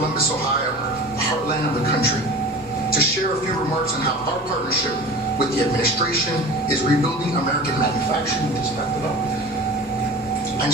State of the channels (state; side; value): normal; both; correlation 0.37